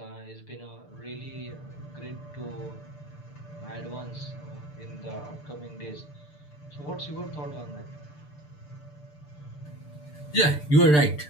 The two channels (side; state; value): right; late; 6.8 ms